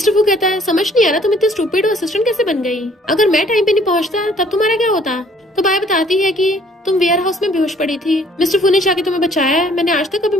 फू कहता है समझ नहीं आ रहा तुम इतने स्टूपिड और असिस्टेंट कैसे बन गई, अगर मैं टाइम पे नहीं पहुंचता तब तुम्हारा क्या होता। तो बाय बताती है कि तुम वेयर हाउस में बेहोश पड़ी थी, मिस्टर फू ने जाके तुम्हें बचाया। मैंने आज तक कभी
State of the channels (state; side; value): normal; both; correlation 0.59